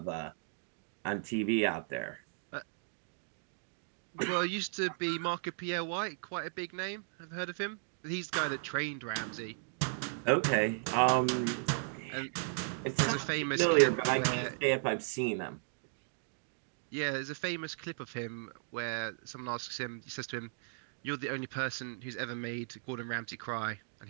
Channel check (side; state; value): left; silent; digital silence